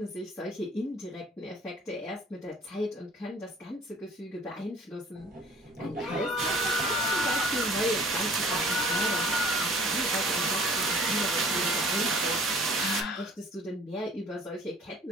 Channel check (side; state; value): both; normal; correlation 0.51